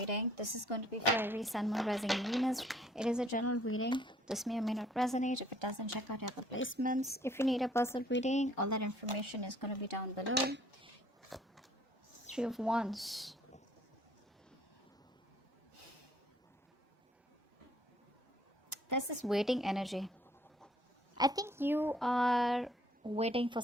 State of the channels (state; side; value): normal; both; correlation 0.60